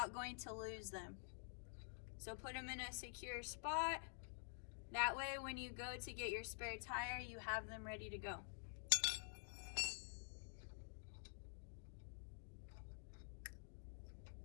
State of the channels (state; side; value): silent; right; digital silence